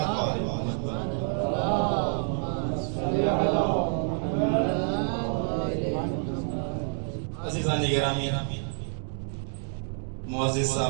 و آل محمد عزیزان گرامی، معزز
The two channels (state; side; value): silent; left; 59 dB below the other